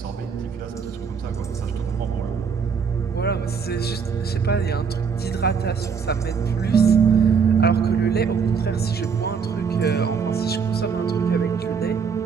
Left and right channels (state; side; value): quieter; left; 6.1 dB